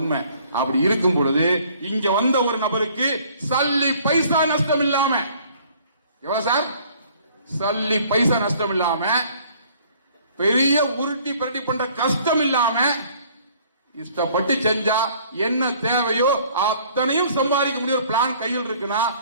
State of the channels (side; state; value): both; inverted; correlation -0.57